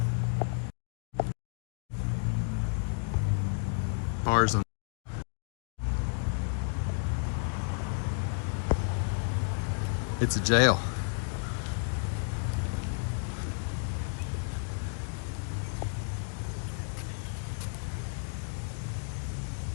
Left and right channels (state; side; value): silent; right; 57 dB below the other